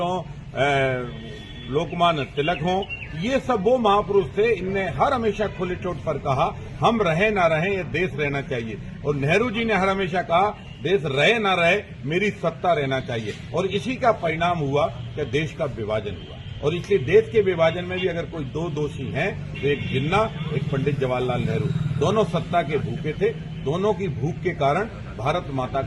हों, लोकमान्य तिलक हों, ये सब वो महापुरुष थे। इनने हर हमेशा खुले चोट पर कहा हम रहे ना रहे, ये देश रहना चाहिए। और नेहरू जी ने हर हमेशा कहा देश रहे ना रहे, मेरी सत्ता रहना चाहिए। और इसी का परिणाम हुआ कि देश का विभाजन हुआ। और इसलिए देश के विभाजन में भी अगर कोई दो दोषी हैं तो एक जिन्ना, एक पंडित जवाहरलाल नेहरू। दोनों सत्ता के भूखे थे। दोनों की भूख के कारण भारत माता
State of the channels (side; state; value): both; identical; correlation 1.00